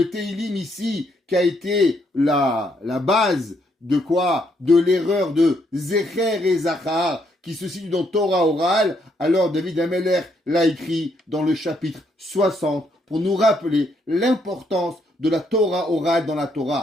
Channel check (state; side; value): normal; both; correlation 0.73